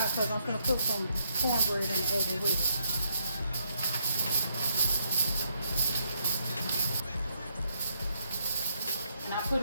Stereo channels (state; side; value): inverted; both; correlation -0.75